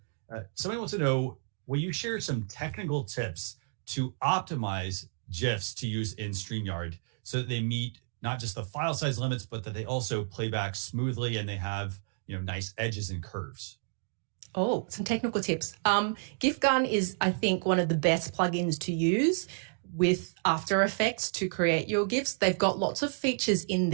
Somebody wants to know, will you share some technical tips to optimize GIFs to use in StreamYard so that they meet not just the file size limits, but that they also play back smoothly and they have, nice edges and curves? Oh, some technical tips. GIF Gun is, I think, one of the best plugins to use with After Effects to create your GIFs. They've got lots of features in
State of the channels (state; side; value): silent; left; digital silence